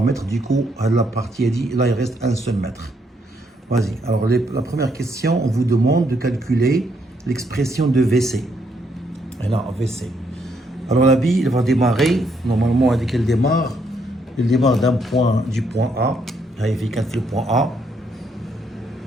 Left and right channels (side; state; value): both; normal; correlation 0.74